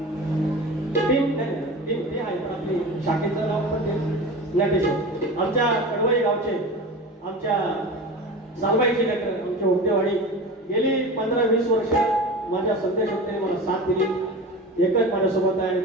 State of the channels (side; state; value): both; normal; correlation 0.32